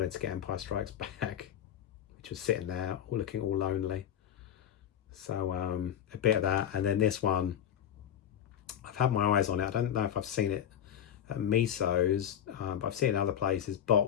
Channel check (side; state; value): right; quieter; 9.7 dB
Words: to get Empire Strikes Back, which was sitting there looking all lonely. So a bit of that, and then this one, I've had my eyes on it. I don't know if I've seen it at Miso's, but I've seen it in other places